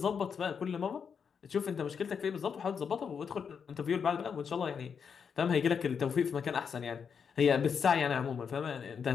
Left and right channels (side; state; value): right; quieter; 6.6 dB